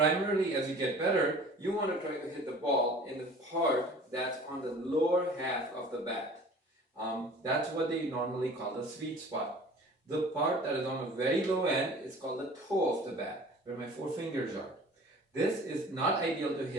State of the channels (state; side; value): normal; both; correlation 0.45